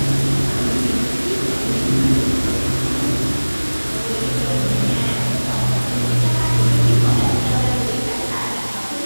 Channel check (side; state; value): both; inverted; correlation -1.00